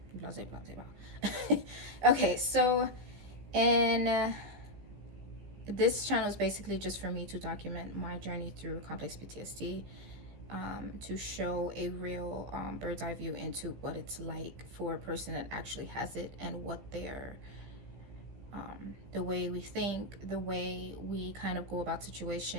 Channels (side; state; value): left; late; 15 ms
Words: blah blah blah blah. Okay, so in this channel is basically just for me to document my journey through complex PTSD, to show a real bird's eye view into what it's like for a person that actually has it, and what their the way we think, the way we kind of go about